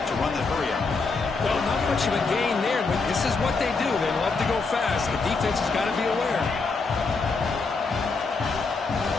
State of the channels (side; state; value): right; quieter; 4.2 dB